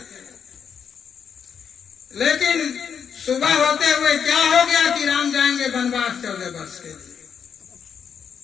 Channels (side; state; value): right; quieter; 7.2 dB